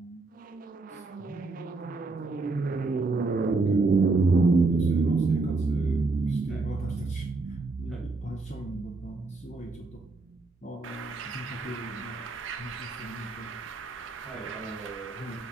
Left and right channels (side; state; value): left; quieter; 3.6 dB